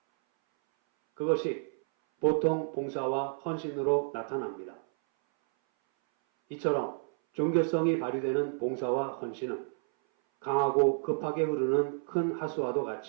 그것이 보통 봉사와 헌신으로 나타납니다. 이처럼 종교성이 발휘되는 봉사와 헌신은 강하고 급하게 흐르는 큰 하수와도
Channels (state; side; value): silent; left; 57 dB below the other